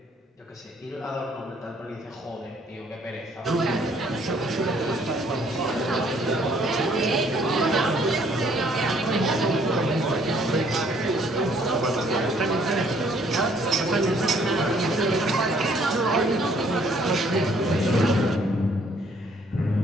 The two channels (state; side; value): normal; both; correlation 0.63